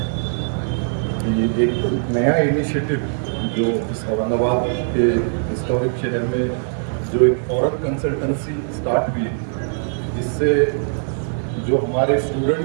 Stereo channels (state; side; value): silent; left; digital silence